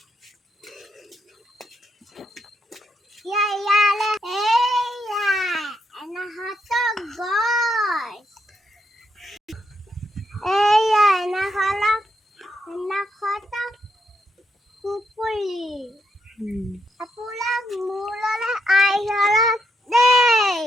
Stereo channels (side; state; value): both; normal; correlation 0.80